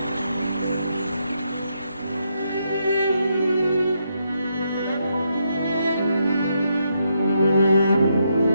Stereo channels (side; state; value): both; inverted; correlation -0.79